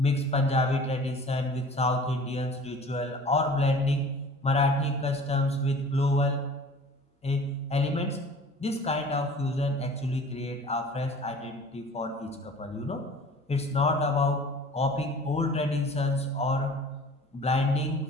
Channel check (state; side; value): normal; both; correlation 0.45